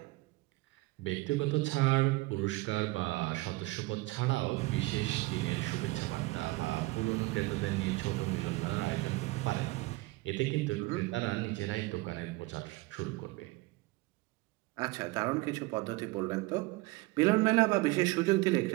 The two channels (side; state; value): left; quieter; 21.8 dB